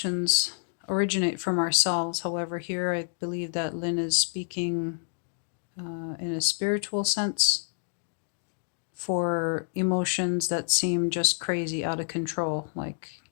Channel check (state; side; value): silent; right; digital silence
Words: originate from ourselves. However, here I believe that Lynn is speaking in a spiritual sense for emotions that seem just crazy, out of control, like